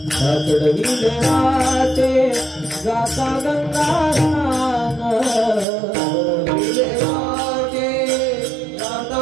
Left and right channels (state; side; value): drops out; left; at 5.7 s